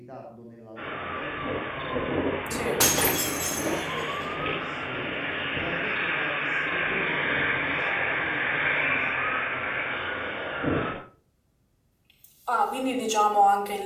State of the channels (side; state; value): both; identical; correlation 1.00